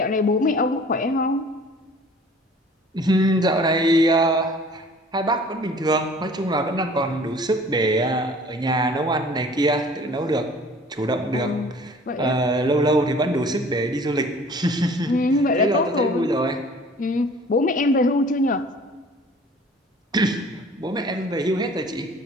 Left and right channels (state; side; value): normal; both; correlation 0.49